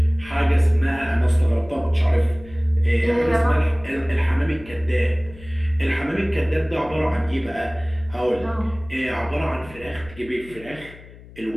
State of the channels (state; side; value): noise; left; hum, 20 dB below the sound